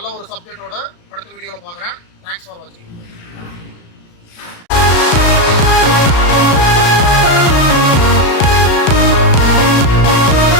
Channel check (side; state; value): right; late; 35 ms